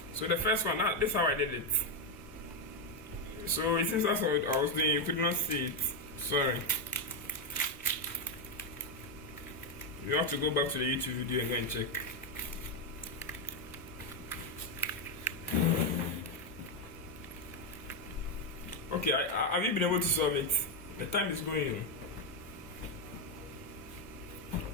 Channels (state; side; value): normal; both; correlation 0.05